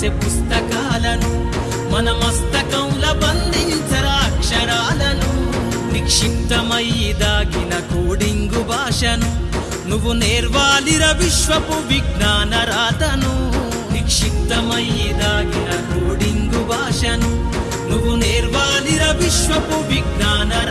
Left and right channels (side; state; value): both; identical; correlation 1.00